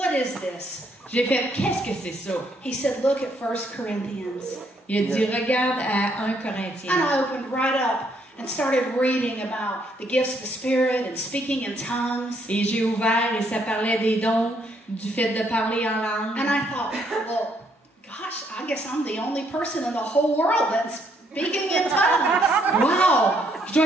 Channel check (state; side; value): normal; both; correlation 0.71